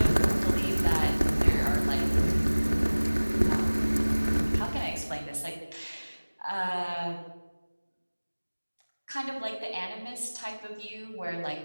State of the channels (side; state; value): both; inverted; correlation -1.00